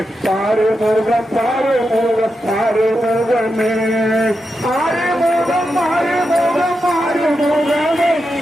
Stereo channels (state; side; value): normal; both; correlation 0.87